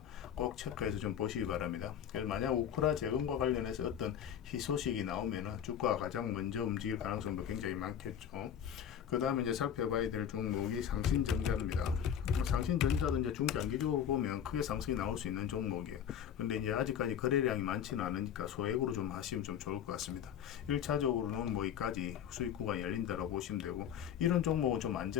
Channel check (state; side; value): quieter; right; 9.0 dB